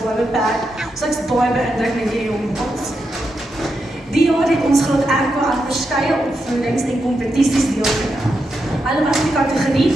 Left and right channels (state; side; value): normal; both; correlation 0.85